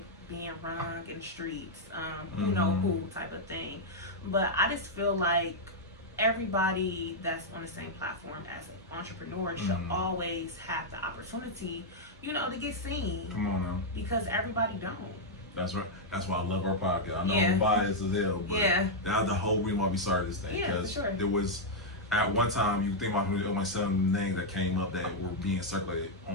being rung in the streets, who know who type of thing. But I just feel like everybody that's on the same platform as an entrepreneur should always have the opportunity, to get seen. Come on now. Because everybody don't. That's right. That's why I love our podcast. I know Yeah. I'm biased as hell, but Yeah. that's the whole reason why we started this thing. Yeah, for Because sure. there was, at one time, you think about my 7 names that came up that were being circulated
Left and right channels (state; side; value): normal; both; correlation -0.03